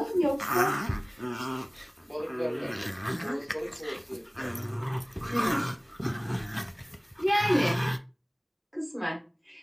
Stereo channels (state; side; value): identical; both; correlation 1.00